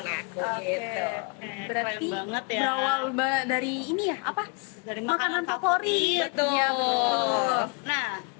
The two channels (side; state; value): right; quieter; 34.8 dB